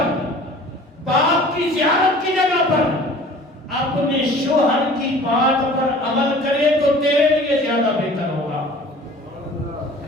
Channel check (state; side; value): normal; both; correlation 0.46